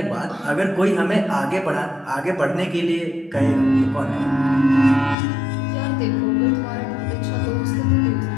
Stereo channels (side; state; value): right; drops out; at 5.2 s